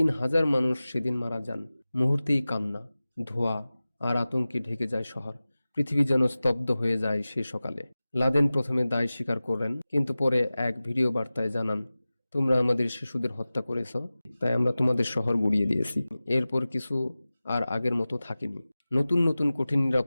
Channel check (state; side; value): inverted; both; correlation -0.97